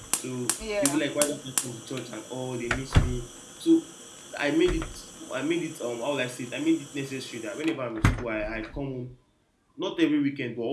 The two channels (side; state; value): both; identical; correlation 1.00